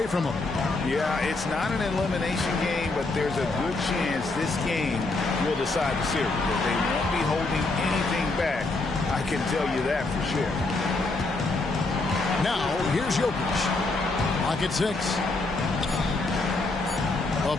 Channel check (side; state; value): right; quieter; 3.3 dB